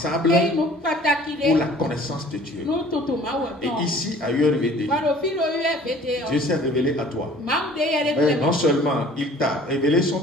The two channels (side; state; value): both; normal; correlation 0.50